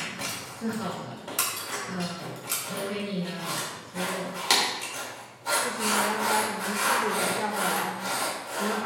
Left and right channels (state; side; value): identical; both; correlation 1.00